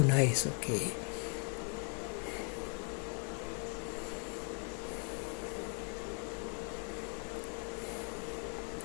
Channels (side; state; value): right; quieter; 39.6 dB